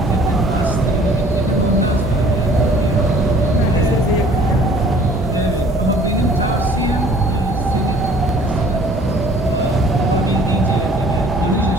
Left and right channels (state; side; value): normal; both; correlation 0.53